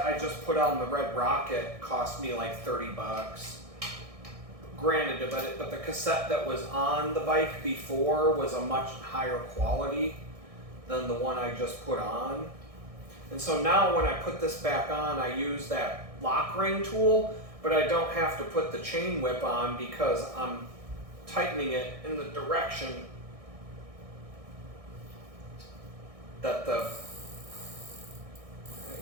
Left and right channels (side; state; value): left; late; 1.6 ms